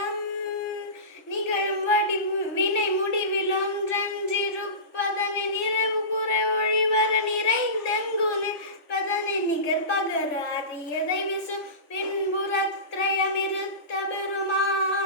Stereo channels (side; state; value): right; late; 3.5 ms